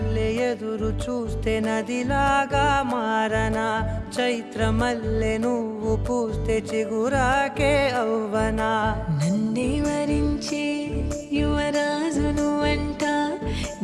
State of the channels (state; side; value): identical; both; correlation 1.00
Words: ఎదురు చూస్తే నదిలాగా మారనా చైత్ర మల్లె నువ్వు పూస్తే చిగురాకే అవ్వనా నన్నే వరించే యువరాజును అంట